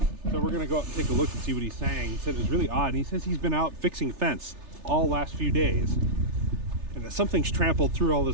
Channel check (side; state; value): left; late; 3.3 ms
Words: so we're gonna go out and take a look and see what he's saying. He said it was really odd, and he says he's been out fixing fence all last few days, and that something's trampled through all